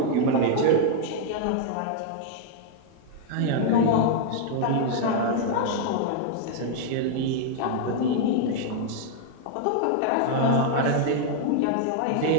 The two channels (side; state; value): both; different; correlation -0.01